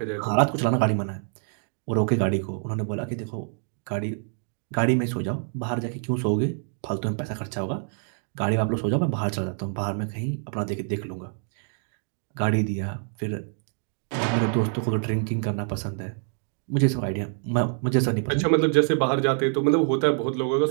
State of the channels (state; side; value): silent; left; 60 dB below the other